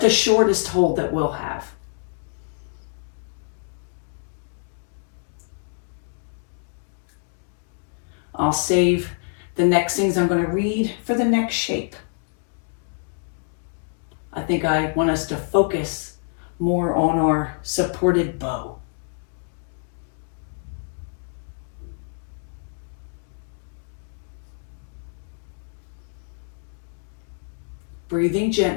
the shortest hold that we'll have. I'll save the next things I'm going to read for the next shape. I think I want us to focus more on our supported bow. Breathing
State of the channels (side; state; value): right; silent; 61 dB below the other